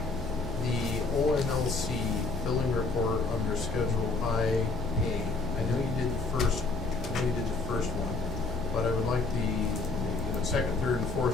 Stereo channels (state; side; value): quieter; right; 3.8 dB